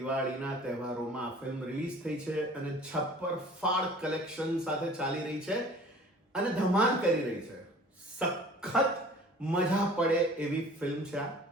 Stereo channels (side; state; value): both; normal; correlation 0.47